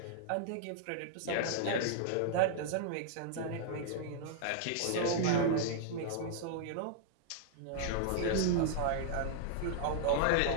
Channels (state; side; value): different; both; correlation -0.01